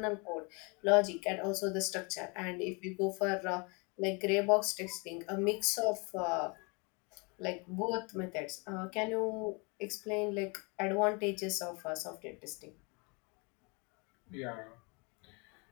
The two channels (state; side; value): quieter; right; 31.0 dB